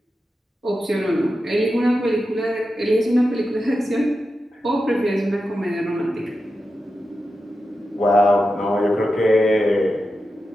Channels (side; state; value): both; normal; correlation 0.90